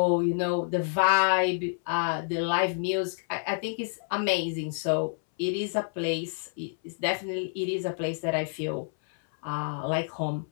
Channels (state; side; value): silent; right; 58 dB below the other